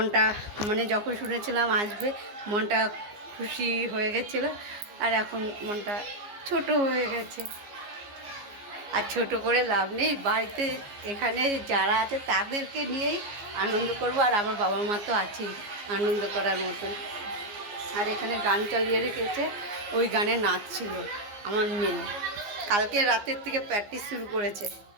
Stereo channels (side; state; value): left; late; 15 ms